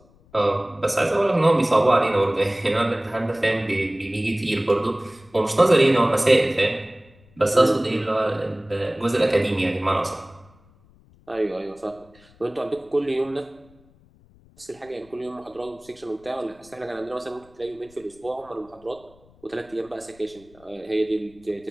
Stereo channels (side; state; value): left; noise; rumble, 28 dB below the sound